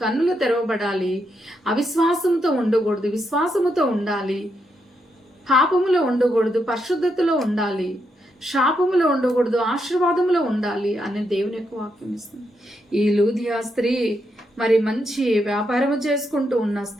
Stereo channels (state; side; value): normal; both; correlation 0.81